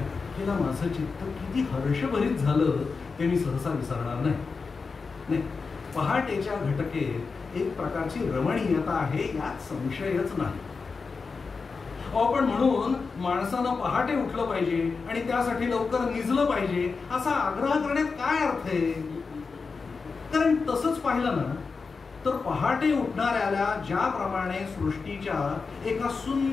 घटकेला माझं चित्त किती हर्षभरीत झालं ते मी सहसा विसरणार नाही. पहाटेच्या घटकेत एक प्रकारची रमणीयता आहे यात संशयच नाही. पण म्हणून माणसानं पहाटे उठलं पाहिजे आणि त्यासाठी लवकर निजलं पाहिजे असा आग्रह करण्यात काय अर्थ आहे? कारण तसंच पाहिलं ना तर पहाटे उठणाऱ्याला ज्याप्रमाणे सृष्टीच्या एका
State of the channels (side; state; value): right; quieter; 4.7 dB